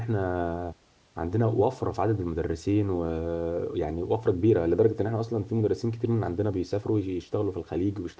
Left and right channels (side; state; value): both; identical; correlation 1.00